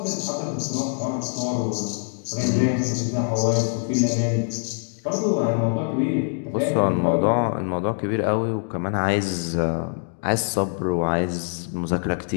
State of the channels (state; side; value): silent; right; 63 dB below the other